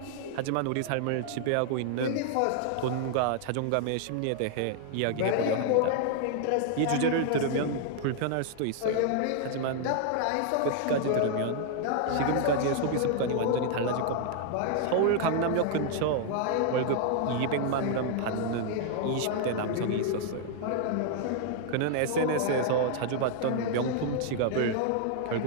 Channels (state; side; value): different; both; correlation 0.00